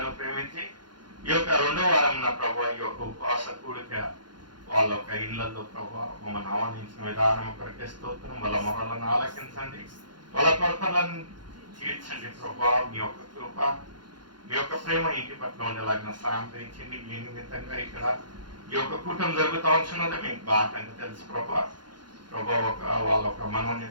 ప్రేమించి ఈ యొక్క 2వ వారం నా ప్రభావ ఈ యొక్క ఉపవాస కూడిక వాళ్ళ యొక్క ఇళ్లలో ప్రభావ మమ్మల్ని ఆహ్వానించిన విధానం కొరకే స్తోత్రం. వాళ్ళ మొరలను ఆలకించండి, వాళ్ళ కొరతలను తీర్చండి ప్రభావ. మీ యొక్క కృప, మీ యొక్క ప్రేమ ఇంటి పట్ల ఉండేలాగిన సాయం తెచ్చింది. మీ నిమిత్తంగా ఇక్కడ ఈ యొక్క కూటమి జరుగుతూ ఉంటున్నది మీకు బాగా తెలుసు ప్రభా. వాళ్ళ ఒక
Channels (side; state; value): left; late; 0.71 ms